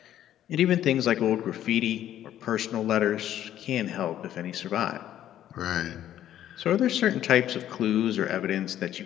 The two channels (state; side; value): quieter; right; 11.7 dB